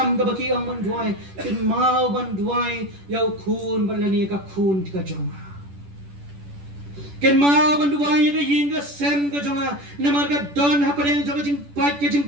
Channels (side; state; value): left; late; 10 ms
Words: ka baki ang manduai kin mau banduai yau kun balani ka kun ka jonga ken ma banduai ga yinga sem ga jonga namar ga don hapadeng jonga jing pat ke jing